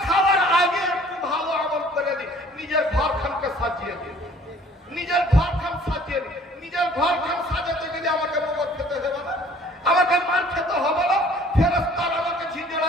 খাওয়ার আগে একটু ভালো আমল করে দিই, নিজের ঘর খানকে সাজিয়ে দিই, নিজের ঘর খান সাজিয়ে দিই। নিজের ঘর খান সাজাতে গেলে আমাকে মগর খেতে হবে না, আমাকে মার খেতে হবে না, ফেরেশতার আমাকে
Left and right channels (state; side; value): normal; both; correlation 0.54